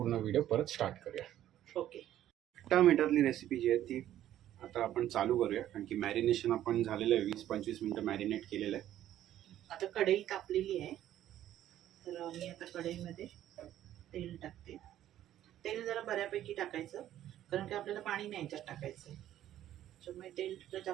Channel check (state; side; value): quieter; left; 12.3 dB